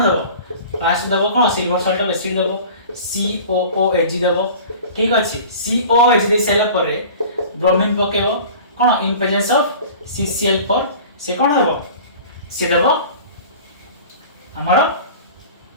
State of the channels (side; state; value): both; inverted; correlation -0.41